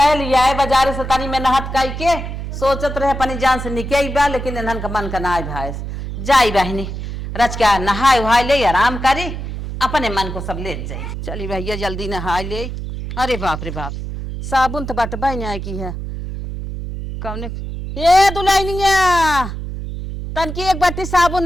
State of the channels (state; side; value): noise; right; hum, 7 dB below the sound